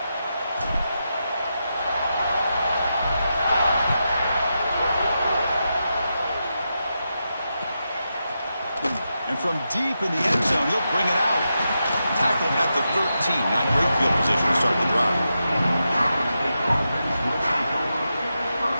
And from deep in the end zone, he'll bring it out. Tackled at the 13. Not great field position to start the drive.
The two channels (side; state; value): both; inverted; correlation -0.87